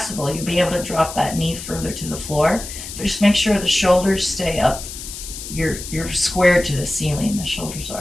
you'll be able to drop that knee further to the floor. But just make sure the shoulders stay up. You're squared to the ceiling, the shoulders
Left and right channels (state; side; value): noise; left; hiss, 10 dB below the sound